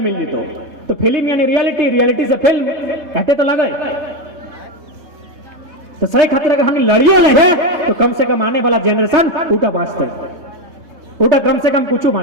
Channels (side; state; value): left; late; 3.3 ms